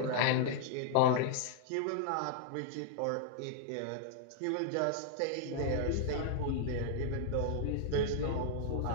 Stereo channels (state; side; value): different; both; correlation -0.01